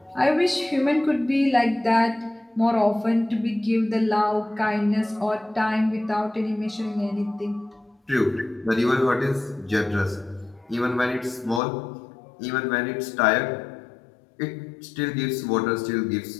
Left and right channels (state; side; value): drops out; right; at 11.6 s